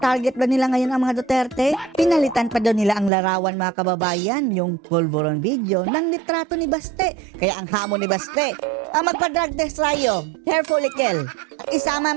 ba nila ngayon ang mga Duterte? Pinalitan pa daw nila ang larawan mga kababayan, yung pulveron video ng litrato ni Baste. Kaya ang hamon ni Baste, magpa-drug test tayo, hair follicle, at isama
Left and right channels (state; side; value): drops out; left; at 3.1 s